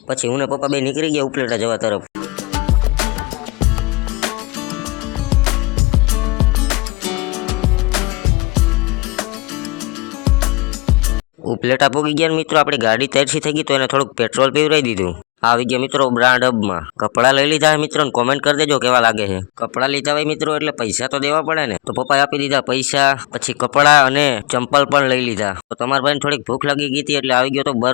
પછી હું ને પપ્પા બે નીકળી ગયા ઉપલેટા જવા તરફ। ઉપલેટા પૂગી ગયા મિત્રો, આપણી ગાડી તરસી થઈ ગઈ તો એને થોડુંક પેટ્રોલ પીવરાઈ દીધું। આવી ગયા મિત્રો બ્રાન્ડ હબમાં, કપડાં લઈ લીધા મિત્રો ને કોમેન્ટ કરી દેજો કેવા લાગે છે। કપડાં લીધા હોય મિત્રો એટલે પૈસા તો દેવા પડે ને, તો પપ્પાએ આપી દીધા પૈસા, પછી કપડાં અને ચંપલ પણ લઈ લીધા। તો તમારા ભાઈને થોડીક ભૂખ લાગી ગઈ હતી એટલે આવી ગયો તો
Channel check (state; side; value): quieter; right; 26.2 dB